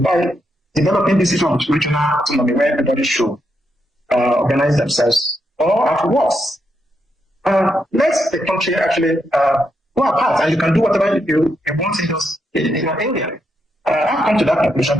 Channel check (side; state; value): both; normal; correlation 0.81